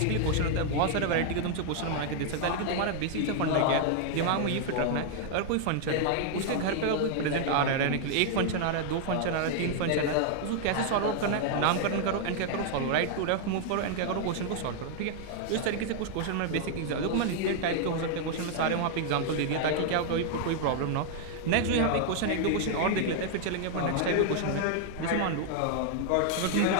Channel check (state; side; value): different; both; correlation 0.00